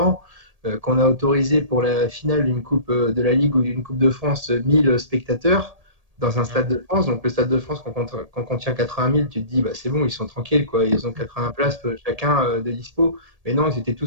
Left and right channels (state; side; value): late; left; 1.8 ms